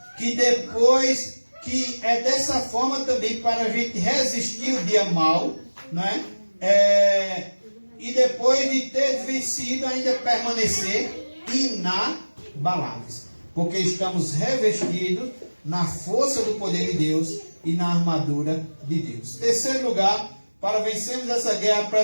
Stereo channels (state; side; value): inverted; both; correlation -1.00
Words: que depois que é dessa forma também para a gente resistir o dia mau, né? E depois de ter vencido ainda permanecer inabaláveis, porque estamos revestidos na força do poder de Deus e na armadura de Deus. Terceiro lugar, para vencermos essa guerra